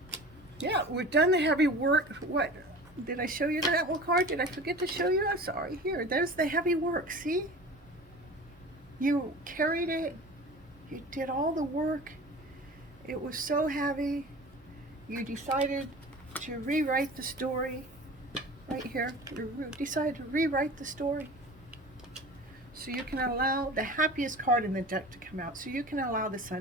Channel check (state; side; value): noise; right; hum, 27 dB below the sound